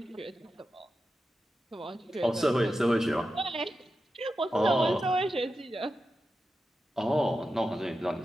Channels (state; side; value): normal; both; correlation 0.90